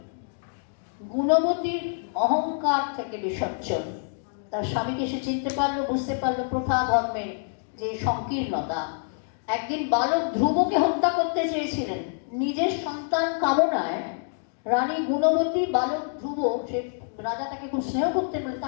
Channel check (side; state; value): right; silent; digital silence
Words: গুণবতীর অহংকার থেকে বিসর্জন। তার স্বামীকে সে চিনতে পারলো, বুঝতে পারলো প্রথা ধর্মের যে সংকীর্ণতা। একদিন বালক ধ্রুবকে হত্যা করতে চেয়েছিলেন নিজের সন্তান কামনায়। রানী গুণবতী বালক ধ্রুব, সে রাজা তাকে খুব স্নেহ করতে বলে